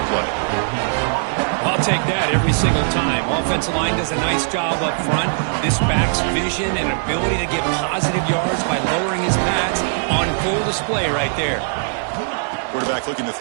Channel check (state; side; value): silent; left; digital silence